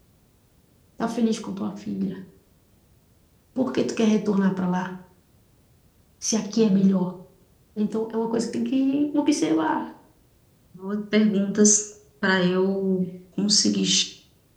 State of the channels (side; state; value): both; identical; correlation 1.00